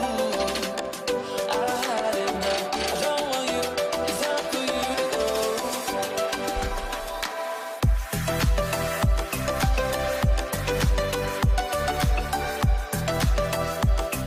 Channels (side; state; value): both; identical; correlation 1.00